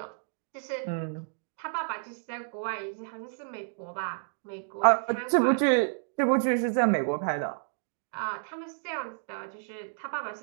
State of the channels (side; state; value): left; silent; digital silence